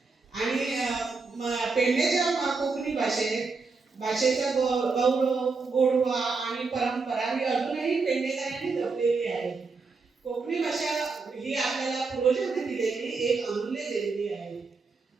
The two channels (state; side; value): quieter; left; 4.3 dB